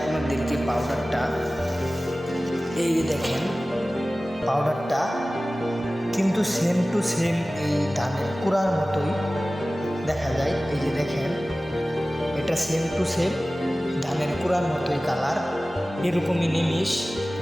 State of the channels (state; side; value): normal; both; correlation 0.97